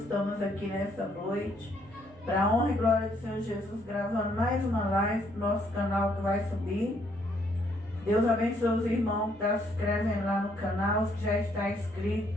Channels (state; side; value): noise; right; hum, 22 dB below the sound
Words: Estamos aqui nessa noite para a honra e glória do Senhor Jesus, gravando mais uma live para o nosso canal que vai subir. Deus abençoe os irmãos que estão se inscrevendo lá no canal, os que já está